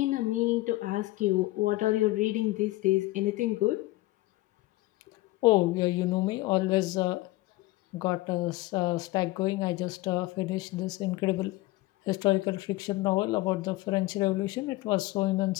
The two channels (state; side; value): quieter; right; 19.1 dB